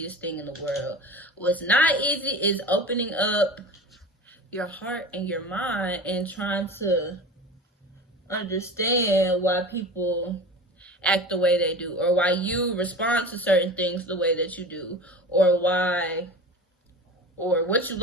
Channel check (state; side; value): normal; both; correlation 0.34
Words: thing in the world. What's not easy is opening up your heart and your mind and trying to understand why people act the way they do, or why you respond to certain things the way that you do, or what you